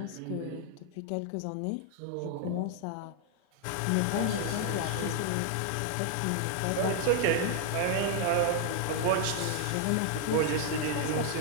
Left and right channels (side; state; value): both; different; correlation 0.00